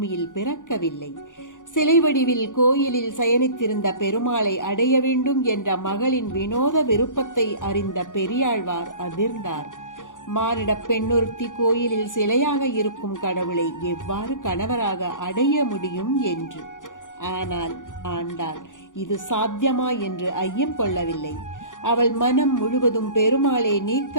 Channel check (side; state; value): right; late; 0.87 ms